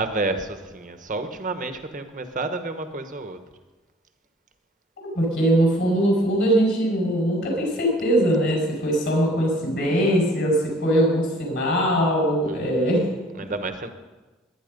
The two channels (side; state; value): both; normal; correlation 0.51